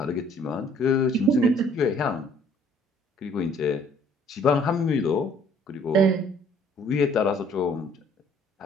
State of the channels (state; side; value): normal; both; correlation 0.59